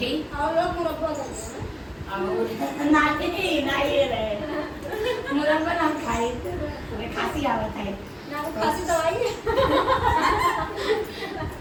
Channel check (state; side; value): identical; both; correlation 1.00